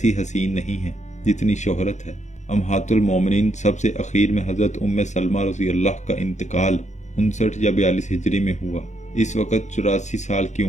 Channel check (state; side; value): late; right; 0.34 ms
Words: حسین نہیں ہے جتنی شہرت ہے۔ امہات المومنین سب سے اخیر میں حضرت ام سلمہ رضی اللہ کا انتقال 59 یا 42 ہجری میں ہوا۔ اس وقت 84 سال کی